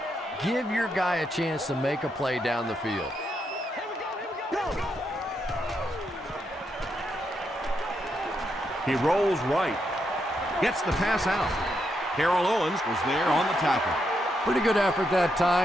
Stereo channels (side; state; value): both; normal; correlation 0.80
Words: Give your guy a chance to make a play down the field. He rolls right, gets the pass out. Carroll Owens was there on the tackle. Pretty good effort that